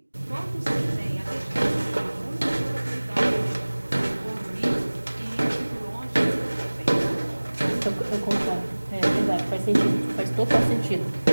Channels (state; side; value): inverted; both; correlation -1.00